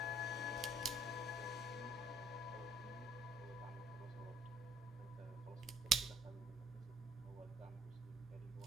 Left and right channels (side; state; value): both; normal; correlation 0.59